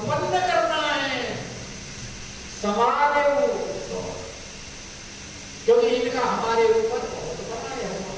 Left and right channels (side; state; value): both; identical; correlation 1.00